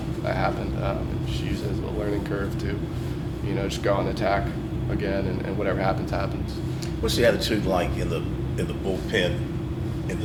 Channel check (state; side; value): identical; both; correlation 1.00